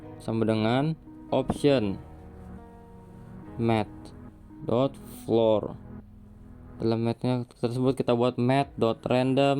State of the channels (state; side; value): identical; both; correlation 1.00